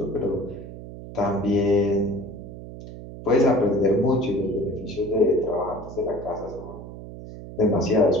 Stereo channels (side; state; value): right; noise; hum, 13 dB below the sound